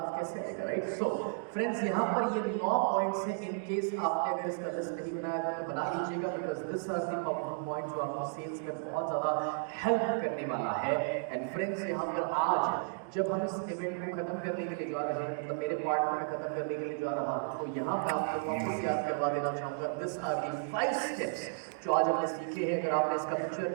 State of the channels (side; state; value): left; silent; digital silence